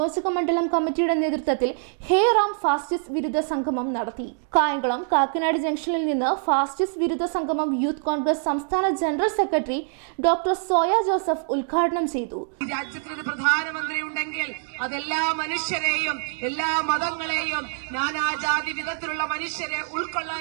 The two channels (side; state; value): left; silent; digital silence